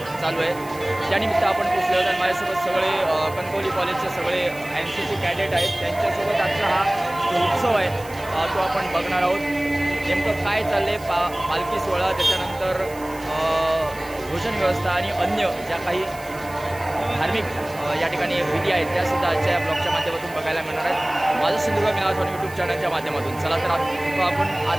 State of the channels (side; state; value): right; noise; hiss, 19 dB below the sound